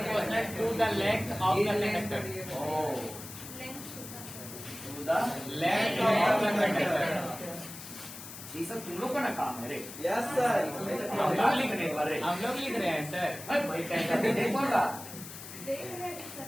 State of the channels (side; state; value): left; noise; hiss, 12 dB below the sound